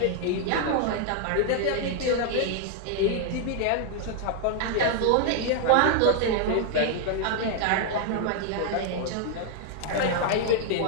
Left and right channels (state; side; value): different; both; correlation 0.00